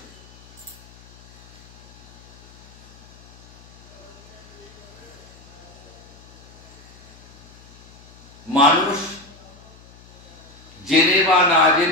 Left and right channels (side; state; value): left; noise; hum, 22 dB below the sound